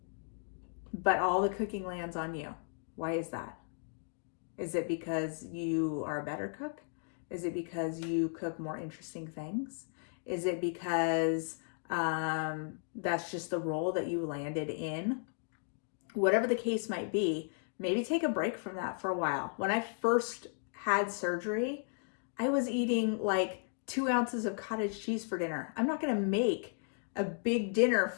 but all the cooking lands on you. Why is that? Is it because you are a better cook? Is it because you cook more interesting things? Is it because that's just the role that you landed in? Whatever the case might be, maybe take a break from that for a while. When I first had surgery, I was eating like 2 ounces of cottage cheese for dinner. I'm not going to make a big dinner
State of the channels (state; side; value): silent; right; 54 dB below the other